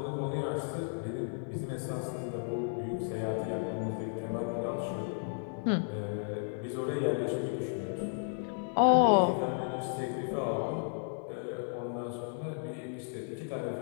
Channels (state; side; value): silent; right; digital silence